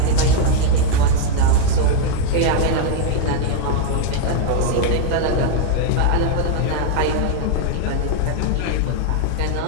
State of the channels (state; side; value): different; both; correlation 0.00